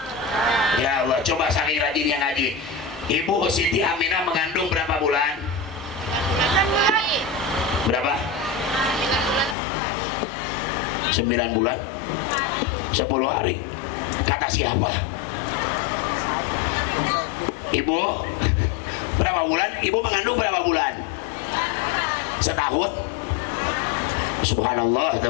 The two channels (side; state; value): right; drops out; at 9.6 s